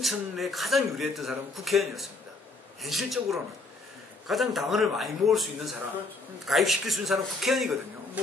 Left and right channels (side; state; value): right; quieter; 3.3 dB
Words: 가장 유리했던 사람은 국회의원이었습니다. 현실적으로는. 가장 당원을 많이 모을 수 있는 사람, 가입시킬 수 있는 사람은 국회의원이거든요.